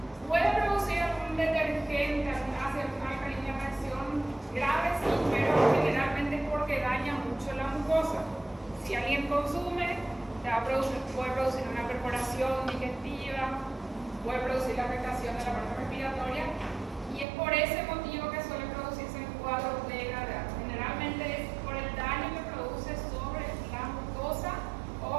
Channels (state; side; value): drops out; left; at 17.2 s